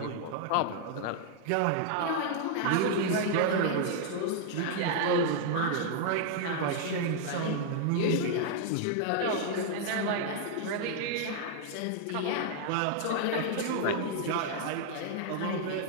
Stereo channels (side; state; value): both; different; correlation 0.00